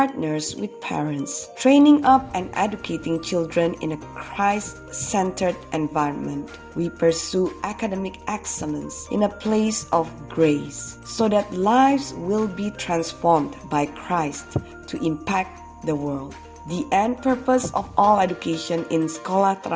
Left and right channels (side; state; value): both; identical; correlation 1.00